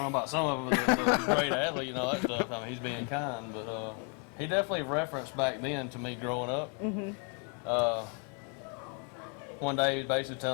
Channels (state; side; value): quieter; right; 38.6 dB